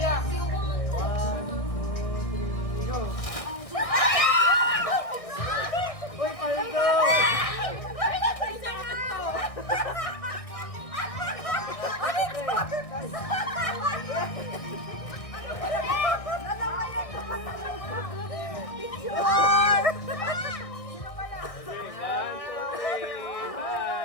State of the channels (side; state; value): right; late; 1.6 ms